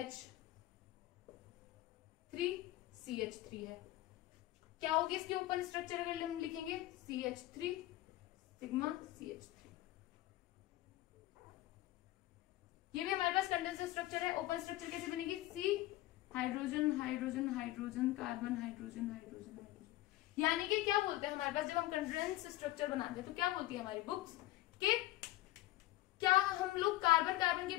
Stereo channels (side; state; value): right; quieter; 16.5 dB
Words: है, क्या होगी इसकी ओपन स्ट्रक्चर अगर हम लिखेंगे CH3 सिग्मा CH3, ये भी हमारे पास कंडेंसर स्ट्रक्चर है। ओपन स्ट्रक्चर कैसे बनेगी, C hydrogen hydrogen hydrogen carbon hydrogen hydrogen hydrogen, यानी कि क्या बोलते हैं हमारे पास जब हम कंडेंस स्ट्रक्चर बनाते हैं तो क्या बोलती है हमारी बुक्स कि क्या हम लोग कार्बन कार्बन के